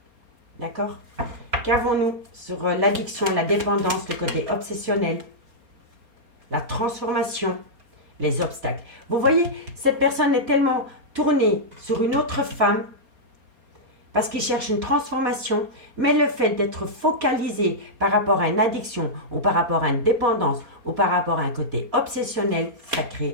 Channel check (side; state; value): left; late; 4.3 ms